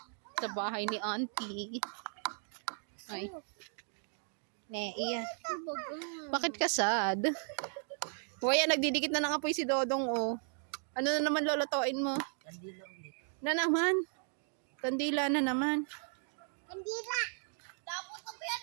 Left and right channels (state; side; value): silent; left; 54 dB below the other